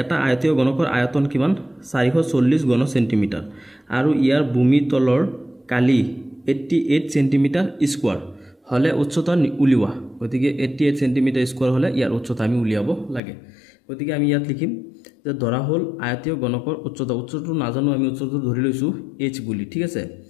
এটা আয়তীয় গণকৰ আয়তন কিমান 440 ঘন সেন্টিমিটাৰ আৰু ইয়াৰ ভূমি তলৰ কালি 88 সেন্টিমিটাৰ স্কয়াৰ হলে উচ্চতা উলিওয়া গতিকে 88 সেন্টিমিটাৰ স্কয়াৰ হলে ইয়াৰ উচ্চতা আমি উলিয়াব লাগে গতিকে আমি ইয়াত লিখিম যে ধৰা হল আয়তীয় গণকৰ উচ্চতাটো নাজানো আমি উচ্চতা ধৰি লৈছো h বুলি ঠিক আছে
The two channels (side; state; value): right; drops out; at 13.2 s